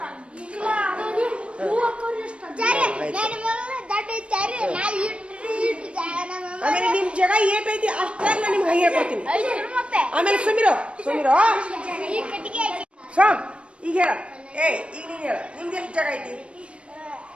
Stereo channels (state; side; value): late; left; 0.060 ms